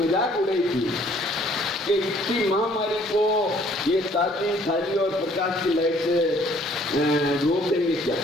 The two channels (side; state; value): both; normal; correlation 0.60